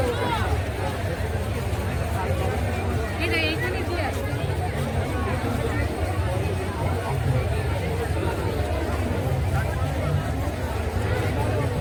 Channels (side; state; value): both; identical; correlation 1.00